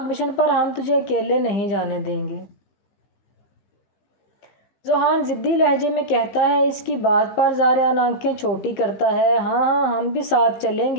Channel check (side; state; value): right; late; 15 ms